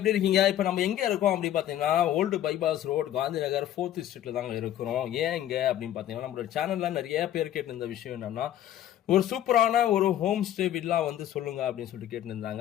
இருக்கீங்க? இப்போ நம்ம எங்கே இருக்கோம் அப்படின்னு பார்த்தீங்கன்னா, old bypass road, Gandhi Nagar 4th ஸ்ட்ரீட்ல தாங்க இருக்கிறோம். ஏன் இங்கே அப்படின்னு பார்த்தீங்கன்னா, நம்மளோட சேனலில் நிறைய பேர் கேட்டிருந்த விஷயம் என்னன்னா, ஒரு சூப்பரான ஒரு ஹோம் ஸ்டே வில்லா வந்து சொல்லுங்க அப்படின்னு சொல்லிட்டு கேட்டுருந்தாங்க.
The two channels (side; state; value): right; quieter; 11.9 dB